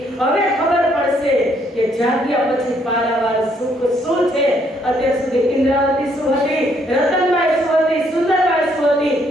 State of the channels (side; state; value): both; normal; correlation 0.69